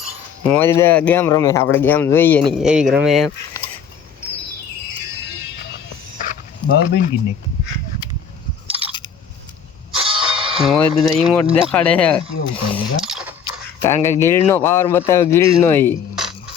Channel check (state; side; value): quieter; right; 7.1 dB